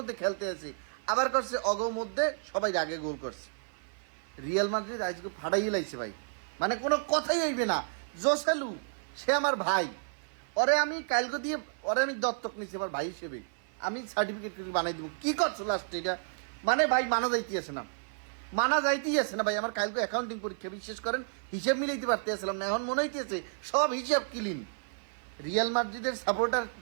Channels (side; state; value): left; silent; 57 dB below the other